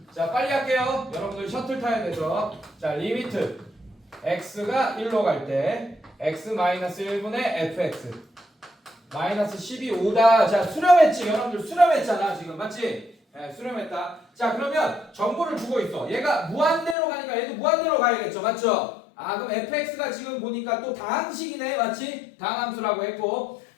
자 빨리 할게요. 여러분들 셔틀 타야 되죠. 자 리미트 x가 1로 갈 때 x 마이너스 1분의 fx 마이너스 12 5다. 자 수렴했지. 여러분들 수렴했잖아 지금. 맞지? 네, 수렴했다. 자 그러면 정보를 주고 있어. 얘가 무한대로 가니까 얘도 무한대로 가야겠죠. 맞죠? 아 그럼 fx가 지금 보니까 또 다항식이네. 맞지? 다항함수라고 했고.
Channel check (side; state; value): right; drops out; at 16.9 s